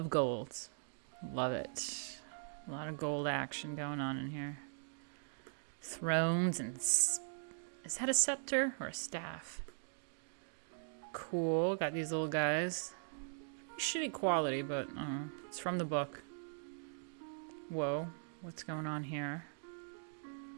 gold. Love it. A lot of gold action going on in here. Thrones and... Is that a scepter or a staff? Cool. Got these little guys. Shitty quality, but it's from the book. Whoa. What's going on here?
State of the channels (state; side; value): silent; left; digital silence